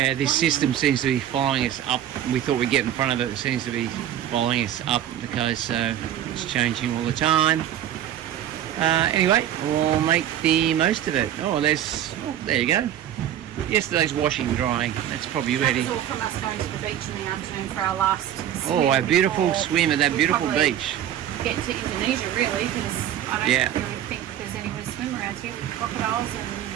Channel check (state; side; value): quieter; left; 11.0 dB